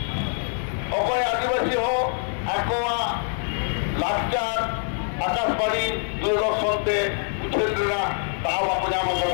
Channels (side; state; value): right; silent; 62 dB below the other